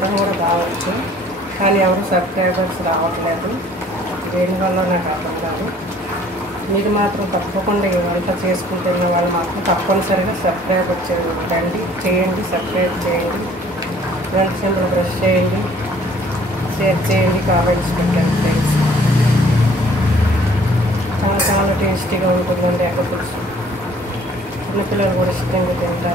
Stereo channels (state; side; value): normal; both; correlation 0.56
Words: కూడా బాగొచ్చు, కానీ ఎవరు సబ్స్క్రైబర్స్ రావట్లేదు. దేనివల్ల నాకు అర్థం కాదు. మీరు మాత్రం తప్పకుండా ఈ వంట చేసుకుంటున్న వాళ్ళు మాత్రం తప్పనిసరిగా సబ్స్క్రైబ్ చేయండి, సబ్స్క్రైబ్ చేయండి, గంట సింబల్ ప్రెస్ చేయండి, షేర్ చేయండి, కామెంట్స్ పెట్టండి ఫ్రెండ్స్. చాలా చాలా టేస్టీగా ఉంటుందండి ఎగ్ పులుసు. చిన్నపిల్లలు కూడా ఇష్టంగా